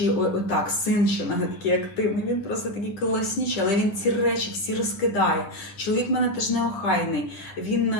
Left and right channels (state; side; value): late; right; 9.9 ms